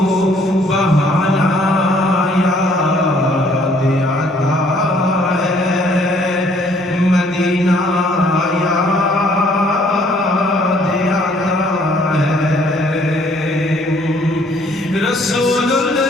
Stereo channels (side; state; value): both; normal; correlation 0.62